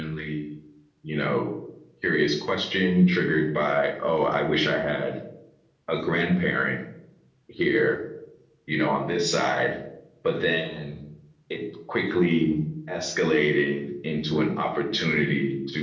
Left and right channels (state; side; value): identical; both; correlation 1.00